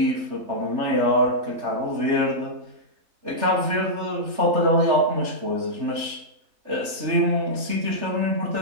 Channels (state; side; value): late; left; 3.4 ms